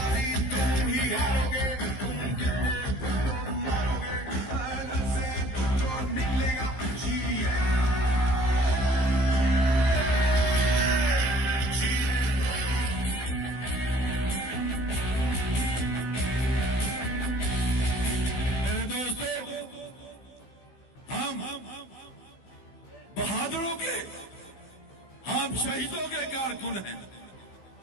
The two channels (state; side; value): late; right; 15 ms